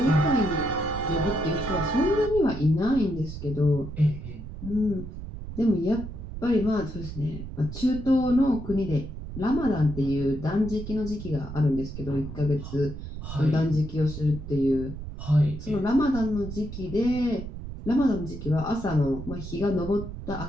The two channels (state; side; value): noise; right; rumble, 10 dB below the sound